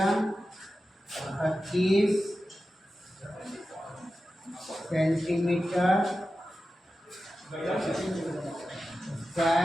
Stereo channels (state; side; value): normal; both; correlation 0.93